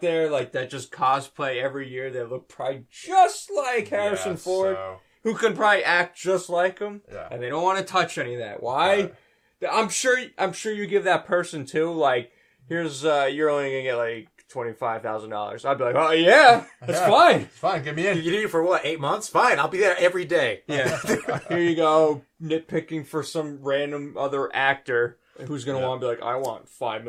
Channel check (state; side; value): identical; both; correlation 1.00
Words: there like that just cosplay every year? That look probably just like Harrison Yeah, Ford, so, who can probably act just like him, yeah. and they don't want to touch any of that. Why? I'm sure you give that person too. Like, here's you're only gonna get like $25,000. I'd be like, oh yeah, that's Yeah. fine. Fine, get me in. You need it for what? 8 months? Fine, I'll be there every day. Yeah, here you go, nitpicking for some random other actor who's gonna Yeah. want to be like, I want $5